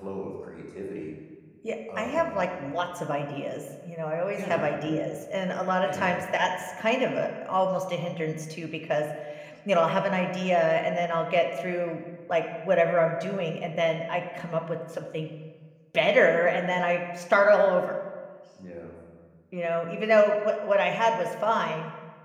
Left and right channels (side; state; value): both; identical; correlation 1.00